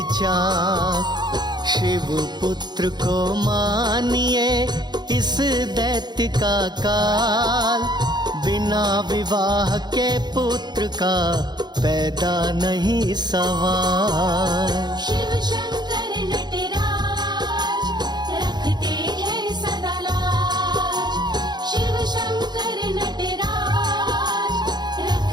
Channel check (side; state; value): left; late; 0.21 ms